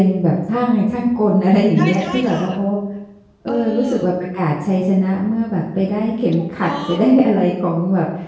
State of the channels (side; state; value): both; identical; correlation 1.00